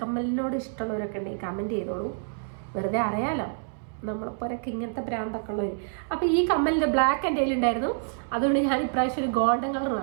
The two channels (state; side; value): silent; left; 60 dB below the other